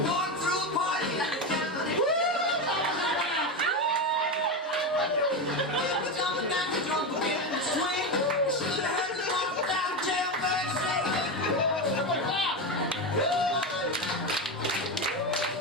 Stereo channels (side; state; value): both; normal; correlation 0.16